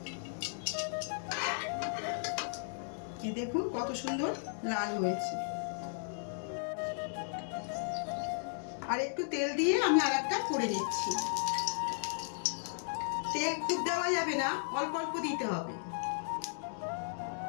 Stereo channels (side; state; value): right; silent; 54 dB below the other